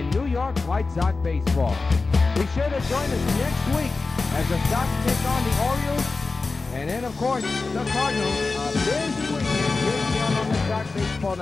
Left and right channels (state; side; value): quieter; right; 3.9 dB